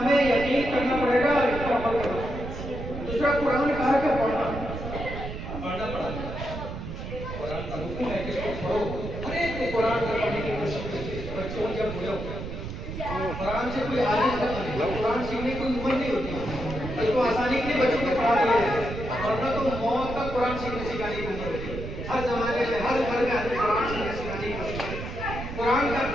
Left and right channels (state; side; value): noise; right; rumble, 7 dB below the sound